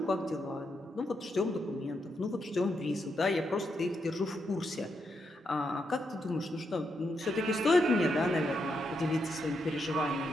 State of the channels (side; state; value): both; normal; correlation 0.81